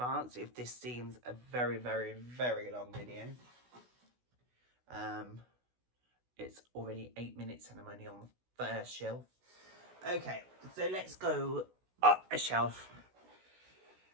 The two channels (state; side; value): late; left; 16 ms